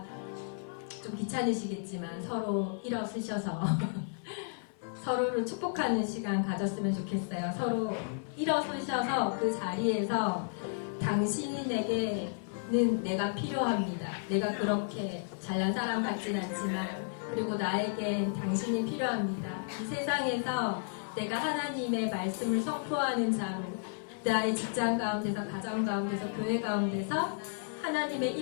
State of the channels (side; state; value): right; silent; 56 dB below the other